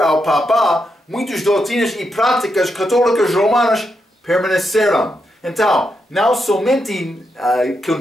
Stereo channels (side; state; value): both; normal; correlation 0.83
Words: Papa, muitas doutrinas e práticas católicas romanas permaneceram. Então, não somente